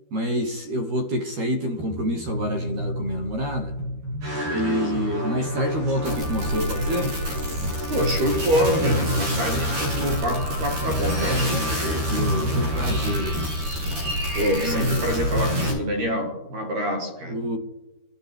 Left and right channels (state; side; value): late; left; 13 ms